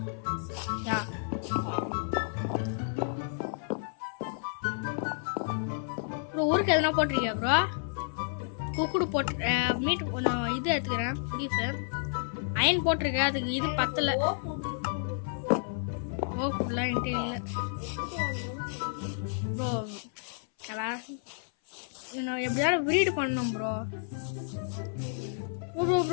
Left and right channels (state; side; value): silent; right; 57 dB below the other